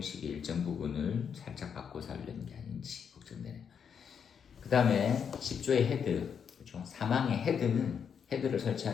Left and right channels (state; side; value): quieter; right; 7.2 dB